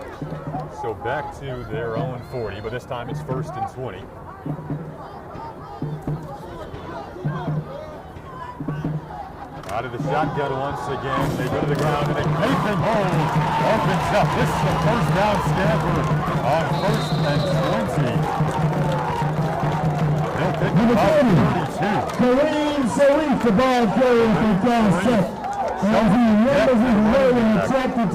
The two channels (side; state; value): both; identical; correlation 1.00